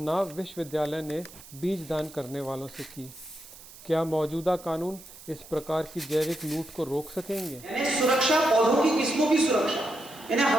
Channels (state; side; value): noise; right; hiss, 19 dB below the sound